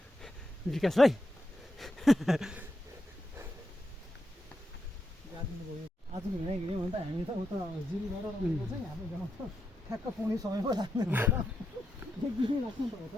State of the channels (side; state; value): both; normal; correlation 0.85